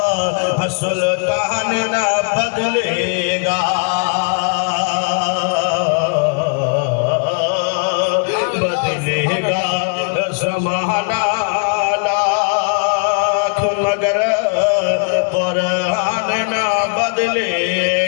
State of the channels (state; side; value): quieter; right; 37.7 dB